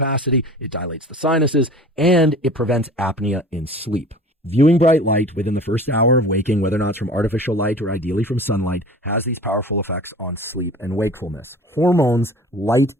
It dilates the sinuses, and it prevents apnea in sleep. Viewing bright light within the first hour of waking, whether or not it's from artificial light or ideally from sunlight, has these powerful effects on sleep and wakefulness. Hormones, light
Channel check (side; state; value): both; normal; correlation 0.42